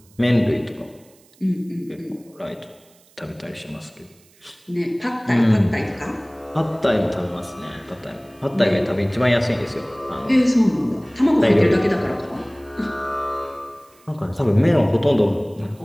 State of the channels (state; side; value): noise; right; hiss, 30 dB below the sound